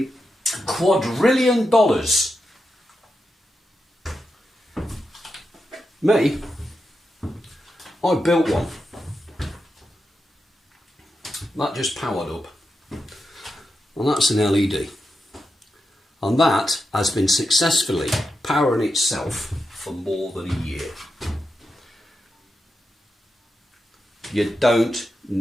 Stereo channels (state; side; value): normal; both; correlation 0.88